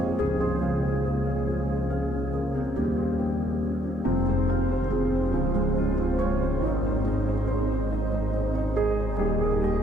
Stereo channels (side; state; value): both; normal; correlation 0.69